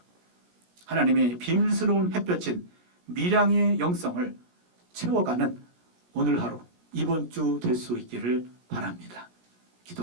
하나님의 비밀스러운 햇볕인 밀양의 영성을 채워가는 오늘 하루, 이번 주 될 수 있기를 바랍니다.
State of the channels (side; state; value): left; late; 17 ms